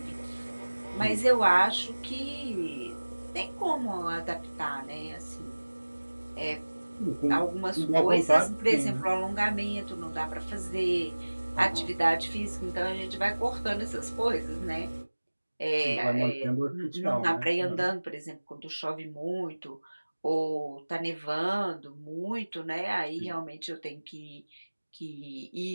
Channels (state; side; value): inverted; both; correlation -1.00